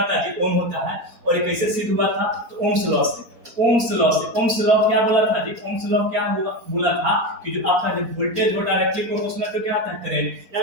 है जी, ओम होता है। और ये कैसे सिद्ध हुआ था, तो ओम्स लॉ से। ओम्स लॉ क्या बोला था जी, ओम्स लॉ क्या होगा बोला था कि जो आपका जो वोल्टेज हो डायरेक्टली प्रोपोर्शनल टू क्या आता है, करंट।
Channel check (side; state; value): left; late; 4.3 ms